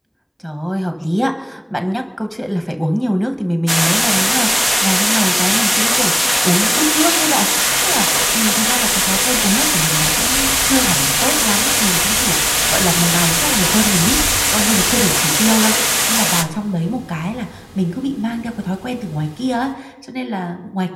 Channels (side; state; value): both; identical; correlation 1.00